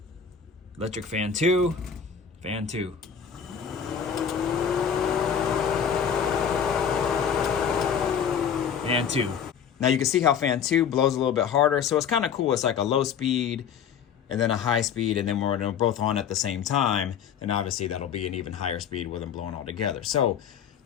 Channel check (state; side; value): quieter; right; 7.6 dB